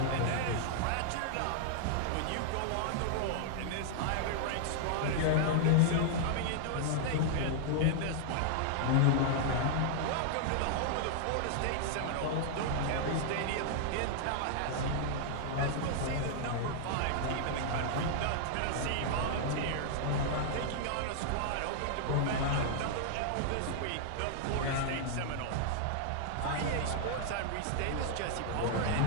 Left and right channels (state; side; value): different; both; correlation -0.01